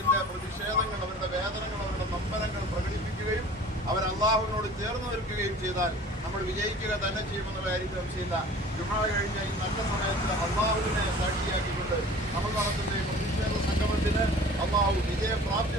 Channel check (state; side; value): normal; both; correlation 0.45